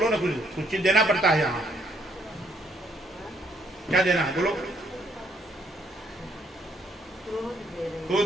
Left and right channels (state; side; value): normal; both; correlation 0.68